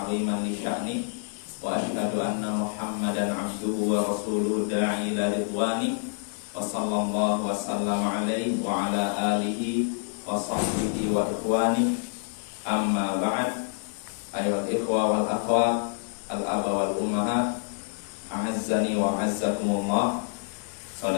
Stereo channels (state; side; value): silent; right; 60 dB below the other